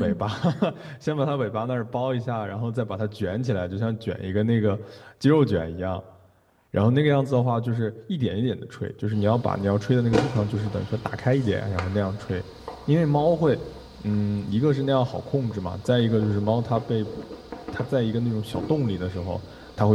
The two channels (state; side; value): identical; both; correlation 1.00